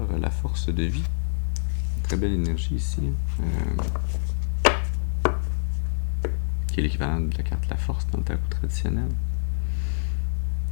la force de vie. Très belle énergie ici. Qui est l'équivalent de la carte la force dans le tarot traditionnel.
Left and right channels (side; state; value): right; silent; 61 dB below the other